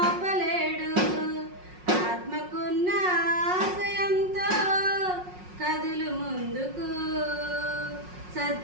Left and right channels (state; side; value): late; left; 5.5 ms